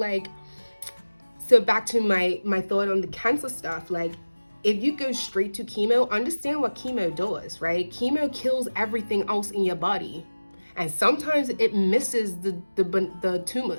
back to my thought on the cancer stuff. Like, if you go straight to chemo, understand what chemo does, right? Chemo kills everything else in your body. And sometimes it misses the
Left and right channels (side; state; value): both; inverted; correlation -1.00